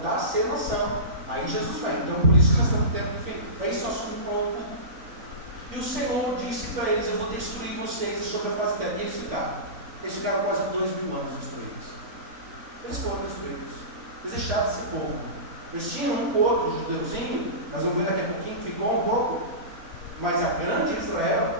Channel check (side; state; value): left; late; 4.0 ms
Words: a ser nação. Aí Jesus vem. Então, por isso que nós estamos tendo, enfim, é isso assunto novo. E o Senhor disse para eles: eu vou destruir vocês sobre a face da terra. E eles ficaram. Eles ficaram quase 2.000 anos destruídos. Eles foram destruídos. Eles deixaram de ser povo. Eles tinham um pouco, judeuzinho, mas eu vou ver daqui a pouquinho, ficou um pouco. Mas a grande